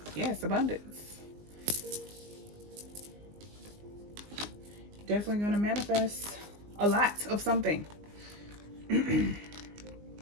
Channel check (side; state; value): left; late; 19 ms